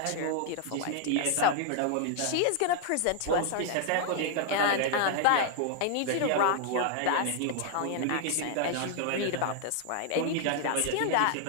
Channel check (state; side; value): different; both; correlation 0.00